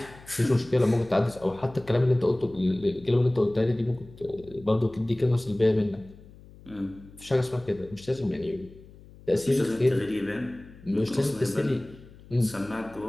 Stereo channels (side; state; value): left; noise; hum, 21 dB below the sound